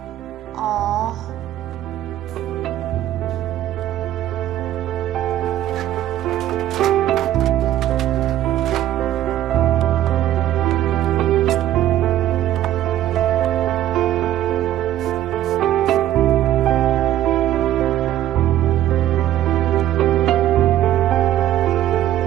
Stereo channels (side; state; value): left; quieter; 12.8 dB